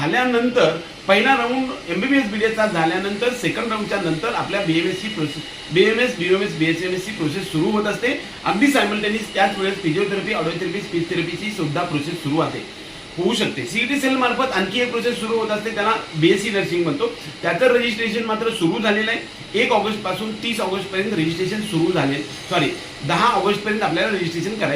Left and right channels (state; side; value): identical; both; correlation 1.00